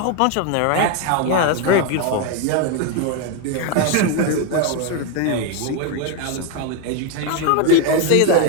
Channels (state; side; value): different; both; correlation 0.01